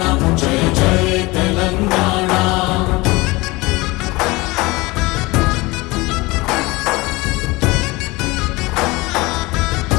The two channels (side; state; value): right; quieter; 22.6 dB